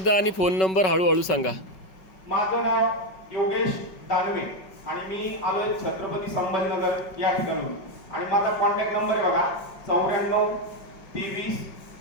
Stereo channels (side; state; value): right; late; 5.3 ms